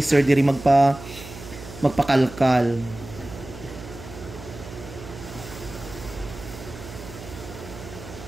sir diri magpakalkal.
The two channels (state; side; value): noise; right; hum, 14 dB below the sound